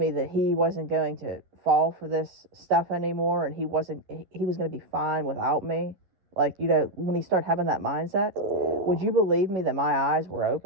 that he wasn't going to fall for this stuff anymore, and he was going to be fine without me. Like, you know, when he started having that mindset, would you believe me that my eyes were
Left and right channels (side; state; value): left; late; 11 ms